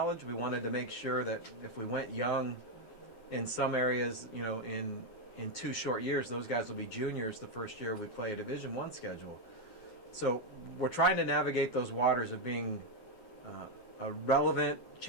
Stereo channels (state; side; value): late; right; 12 ms